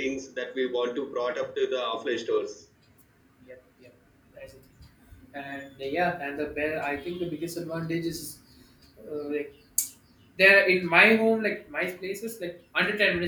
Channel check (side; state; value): both; identical; correlation 1.00